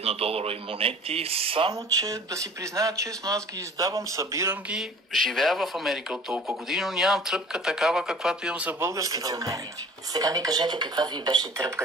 1-доларови монети, само че да си призная честно, аз ги издавам, събирам ги, живея в Америка от толкова години, но нямам тръпка такава, каквато имам за българските монети. Сега ми кажете каква ви беше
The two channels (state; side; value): normal; both; correlation 0.47